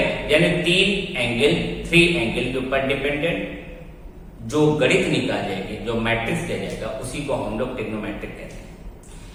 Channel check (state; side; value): identical; both; correlation 1.00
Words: यानी तीन एंगल, थ्री एंगल के ऊपर डिपेंडेंट जो गणित निकाल जाएगी, जो मैट्रिक्स दिया जाएगा उसी को हम लोग ट्रिग्नोमेट्रिक कहते हैं।